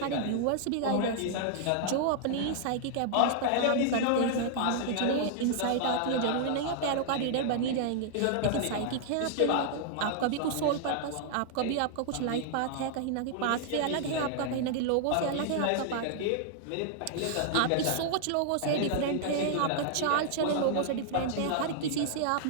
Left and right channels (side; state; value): both; different; correlation -0.01